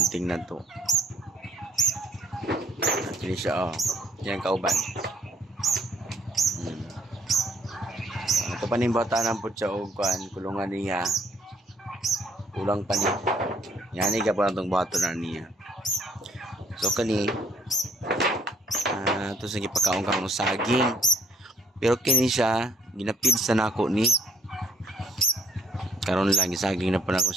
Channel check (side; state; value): both; normal; correlation 0.62